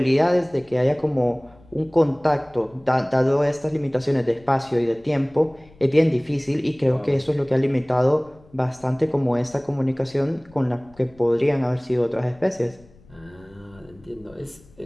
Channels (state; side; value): noise; left; rumble, 27 dB below the sound